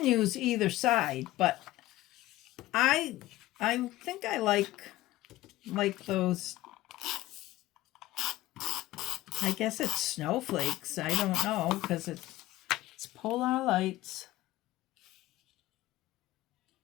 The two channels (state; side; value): quieter; right; 16.6 dB